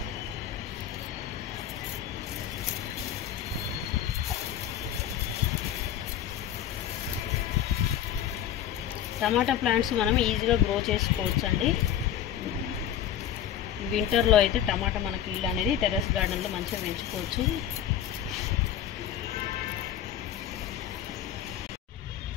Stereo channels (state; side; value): quieter; right; 10.4 dB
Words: టమాటా ప్లాంట్స్ మనం ఈజీగా గ్రో చేసుకోవచ్చు అండి. వింటర్లో అయితే టమాటా మనకి ఇల్లు అనేది టెర్రస్ గార్డెన్లో మంచిగా పెంచుకోవచ్చు.